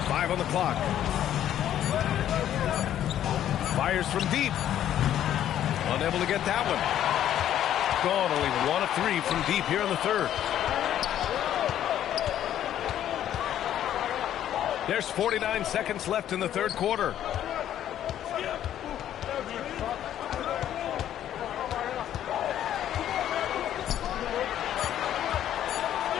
Five on the clock. Fires from deep. Unable to get that one. Gone only 1 of 3 from deep here in the third. There's 49 seconds left in the third quarter.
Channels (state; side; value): quieter; right; 11.2 dB